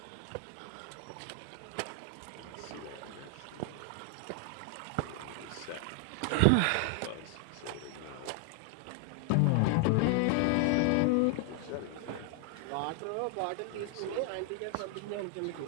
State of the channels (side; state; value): both; different; correlation 0.00